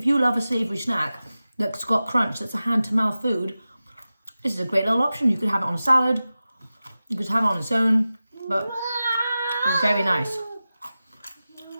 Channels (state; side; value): inverted; both; correlation -0.95